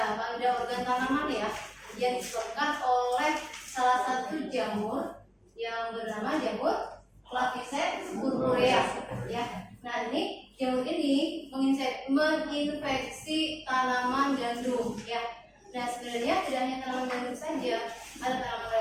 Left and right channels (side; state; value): both; identical; correlation 1.00